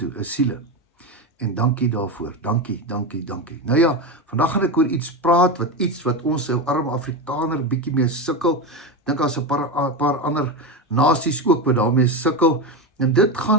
is siele. En dankie daarvoor, dankie. Nou ja, vandag gaan ek oor iets praat, wat ons ou arme Afrikaner bietjie mee sukkel. Dink as 'n paar ander nasies ook wat daarmee sukkel. En dit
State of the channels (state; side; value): normal; both; correlation 0.16